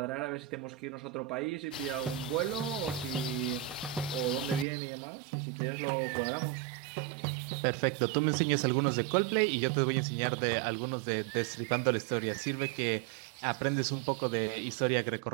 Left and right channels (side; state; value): left; drops out; at 4.7 s